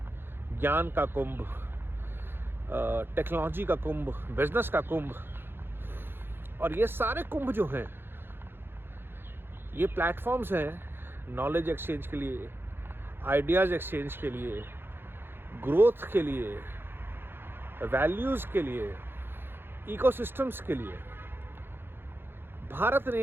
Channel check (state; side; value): late; left; 0.10 ms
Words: ज्ञान का कुंभ, टेक्नोलॉजी का कुंभ, बिजनेस का कुंभ। और ये सारे कुंभ जो हैं ये प्लेटफॉर्म्स हैं नॉलेज एक्सचेंज के लिए, आइडियाज़ एक्सचेंज के लिए, ग्रोथ के लिए, वैल्यूज़ के लिए, इकोसिस्टम्स के लिए। भारत